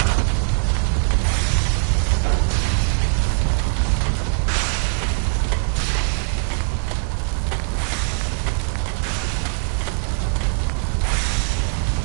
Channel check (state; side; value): silent; left; digital silence